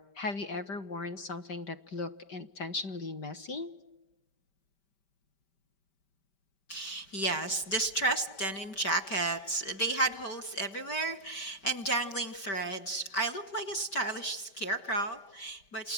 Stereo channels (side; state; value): right; late; 5.1 ms